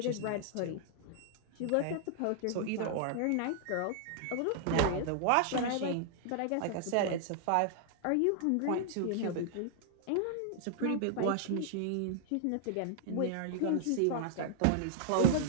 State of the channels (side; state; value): both; different; correlation -0.01